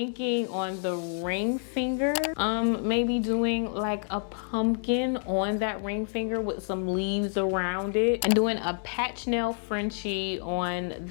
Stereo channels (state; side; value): silent; right; 59 dB below the other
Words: on the ring finger, maybe doing like a pumpkin on that ring finger with some leaves around it, and doing a patch nail Frenchie on